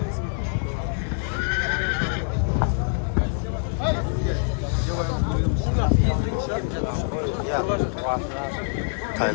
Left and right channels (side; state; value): right; silent; 62 dB below the other